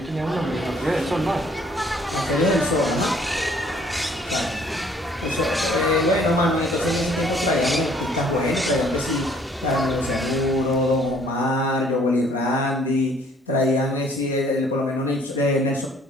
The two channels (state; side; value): normal; both; correlation 0.60